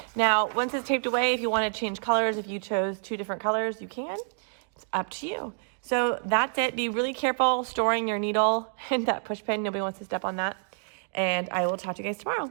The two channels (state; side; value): silent; left; digital silence